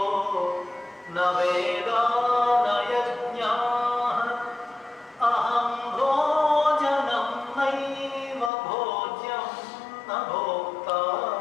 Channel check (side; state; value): right; drops out; at 8.5 s